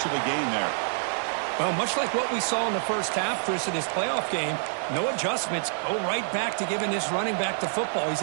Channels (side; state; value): left; silent; digital silence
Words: of a gain there. Well, much like what we saw in the first half, Chris, of this playoff game, no adjustments, go right back to giving this running back the football. He's